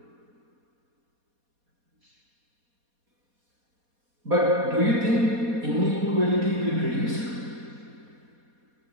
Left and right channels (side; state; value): left; late; 4.2 ms